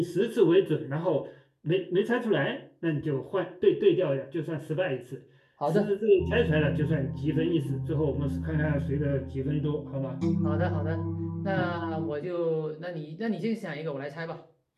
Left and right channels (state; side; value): identical; both; correlation 1.00